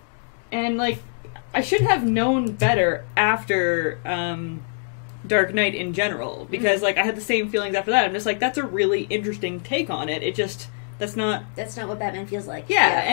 and, like, I should have known better after Dark Knight in general, because, like, I had the same feelings after that. I'm just like, that's a really interesting take on it. It just, that's not... That's not what Batman feels like. Yeah,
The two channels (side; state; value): right; silent; digital silence